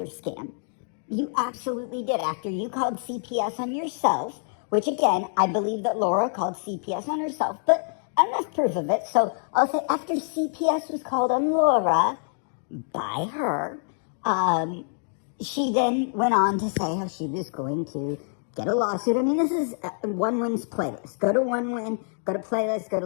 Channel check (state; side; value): silent; right; 61 dB below the other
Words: scam. You absolutely did. After you called CPS on yourself, which again, I believe that Laura called CPS on herself, but enough proof of it. So I'll say after CPS was called on Laura by her, she then went on to say how she was going to get a lawsuit. I mean, this is One Win's playlist. Go to One Win, go to playlist, go to